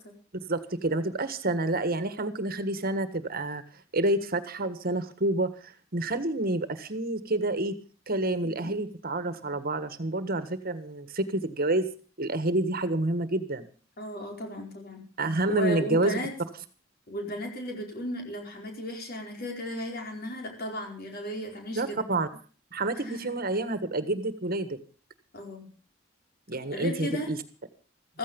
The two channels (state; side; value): normal; both; correlation 0.18